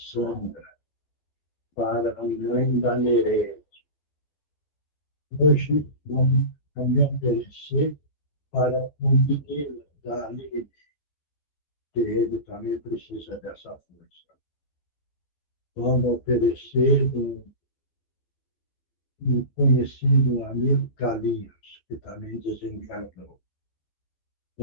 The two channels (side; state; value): right; late; 13 ms